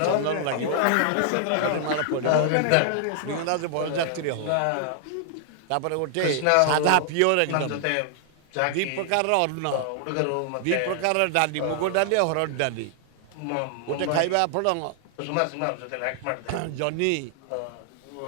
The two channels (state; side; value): different; both; correlation 0.00